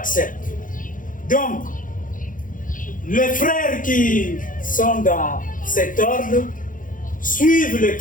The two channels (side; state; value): right; late; 0.39 ms